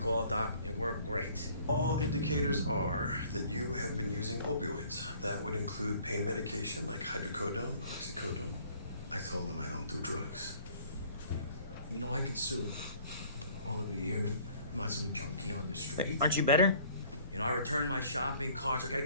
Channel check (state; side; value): inverted; both; correlation -0.55